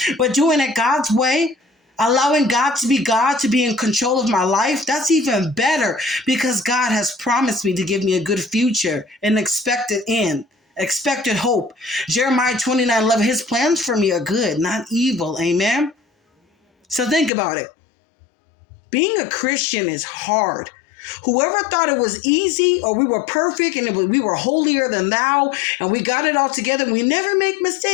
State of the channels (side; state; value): right; drops out; at 17.3 s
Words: But doing it God's way, allowing God to be in control of my life, that's even better because God has promised me to give me a good future, an expected end, expected hope. Jeremiah 29:11, His plans for me are good, not evil. Amen. So think about it. Being a Christian is hard. Whoever thought it was easy or we were perfect and we were holier than thou and we got it all together and we never make